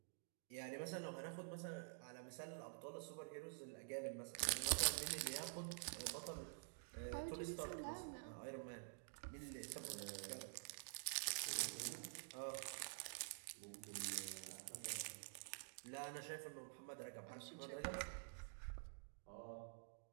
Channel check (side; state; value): left; silent; digital silence